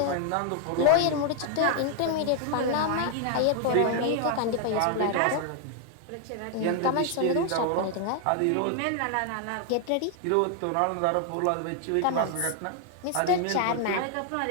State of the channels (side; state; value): both; different; correlation 0.00